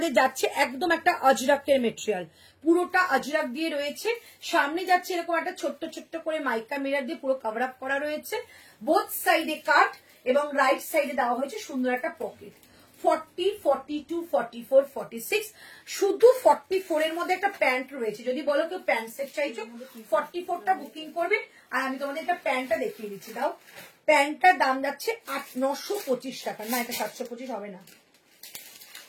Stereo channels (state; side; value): identical; both; correlation 1.00